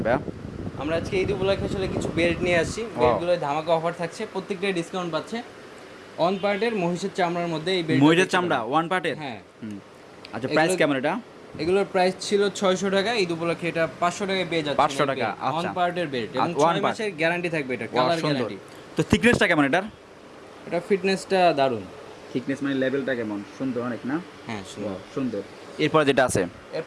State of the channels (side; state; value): both; identical; correlation 1.00